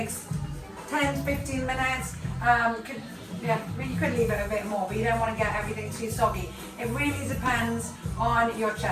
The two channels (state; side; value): identical; both; correlation 1.00